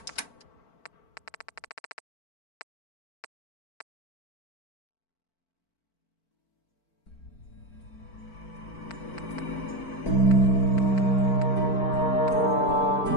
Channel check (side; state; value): right; late; 4.5 ms